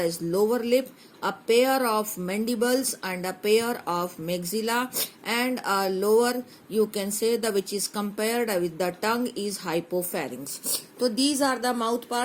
lower lip, a pair of mandibles and a pair of maxilla, and a lower, you can say, the which is compared with the tongue is hypopharynx. So these are the mouth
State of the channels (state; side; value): identical; both; correlation 1.00